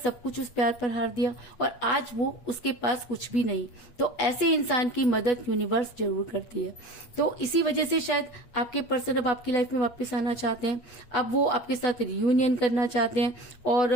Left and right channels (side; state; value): right; late; 8.5 ms